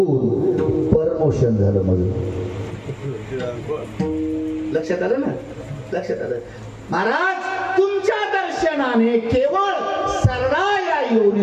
परमोशन झालं माझं. लक्षात आलं ना? लक्षात आलं महाराज. तुमच्या दर्शनाने केवळ सरळा या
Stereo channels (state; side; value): identical; both; correlation 1.00